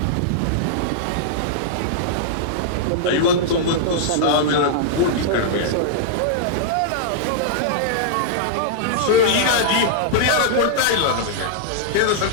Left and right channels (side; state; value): both; different; correlation -0.02